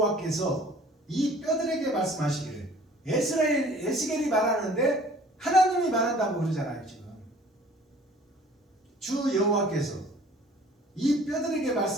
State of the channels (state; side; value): normal; both; correlation 0.51